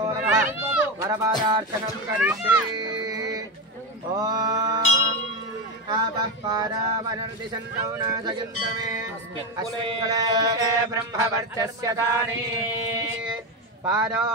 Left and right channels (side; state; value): both; normal; correlation 0.14